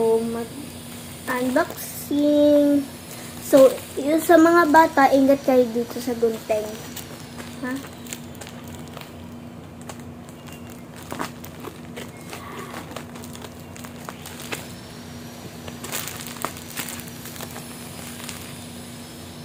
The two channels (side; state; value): both; identical; correlation 1.00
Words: mag-unboxing. So yung sa mga bata, ingat kayo dito sa gunting. Ha?